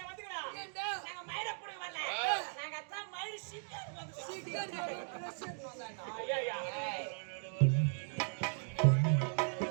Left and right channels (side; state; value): left; silent; digital silence